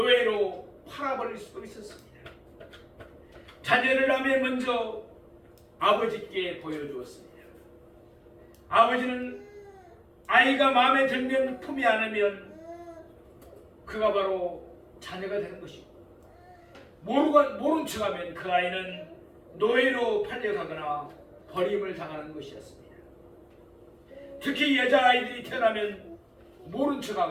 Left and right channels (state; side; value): identical; both; correlation 1.00